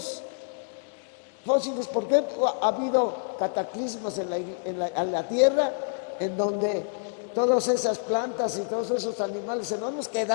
fósiles, porque ha habido cataclismos en la Tierra en donde todas esas plantas y todos esos animales enormes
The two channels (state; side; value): silent; right; digital silence